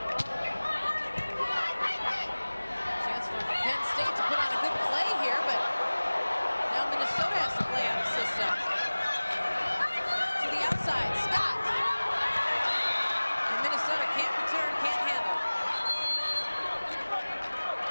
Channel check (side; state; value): both; inverted; correlation -1.00